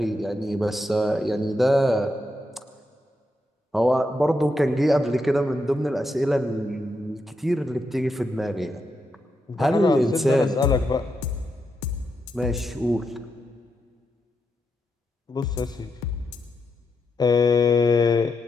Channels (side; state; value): both; normal; correlation 0.84